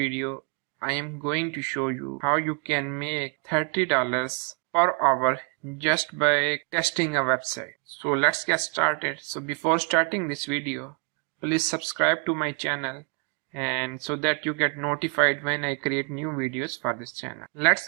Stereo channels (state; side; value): quieter; left; 34.9 dB